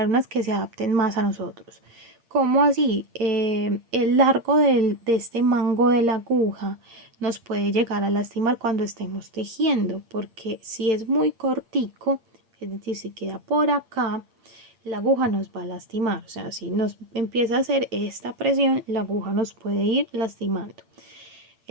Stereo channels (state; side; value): late; left; 8.7 ms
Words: unas que se adapten más a nosotros. ¿Cómo así? El largo de este mango de la aguja nos puede llegar a lastimar cuando estemos tejiendo, porque si es muy cortico, es decir, si queda por acá, la aguja nos va a lastimar. O sea, si nos empieza a hacer esta presión, la aguja nos puede ir lastimando.